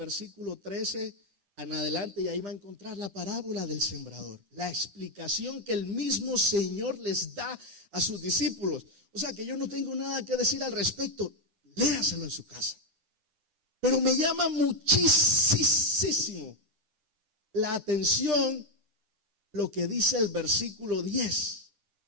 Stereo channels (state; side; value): late; left; 10 ms